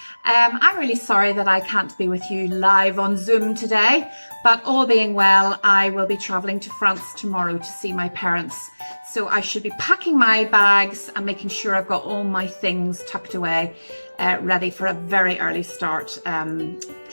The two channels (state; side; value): inverted; both; correlation -1.00